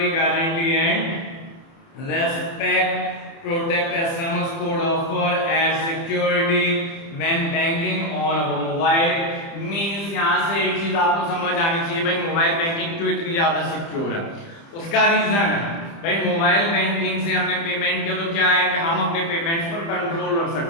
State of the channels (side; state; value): right; late; 30 ms